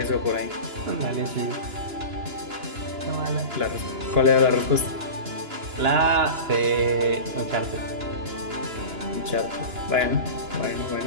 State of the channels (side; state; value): left; late; 2.9 ms